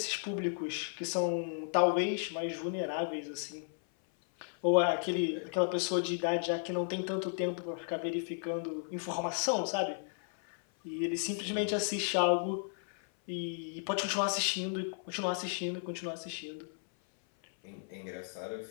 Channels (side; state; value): right; silent; 55 dB below the other